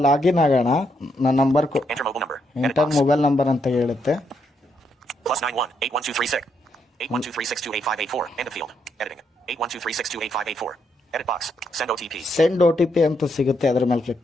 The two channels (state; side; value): normal; both; correlation 0.77